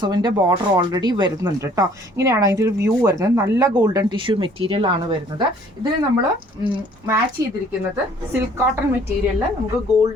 ബോർഡർ ഓൾറെഡി വരുന്നുണ്ട് കേട്ടോ. ഇങ്ങനെയാണ് അതിൻ്റെ ഒരു വ്യൂ വരുന്നത്. നല്ല ഗോൾഡൻ ടിഷ്യൂ മെറ്റീരിയൽ ആണ് വരുന്നത്. ഇതിന് നമ്മൾ മാച്ച് ചെയ്തിരിക്കുന്നത് സിൽക്ക് കോട്ടൺ മെറ്റീരിയലിൽ നമുക്ക്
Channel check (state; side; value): normal; both; correlation 0.57